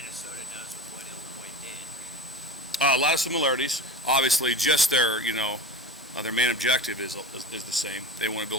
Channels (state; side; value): normal; both; correlation 0.31